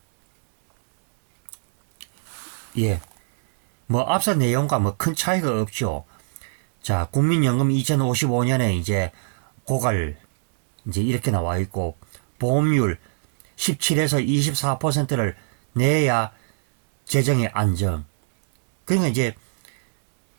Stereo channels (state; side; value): silent; left; 64 dB below the other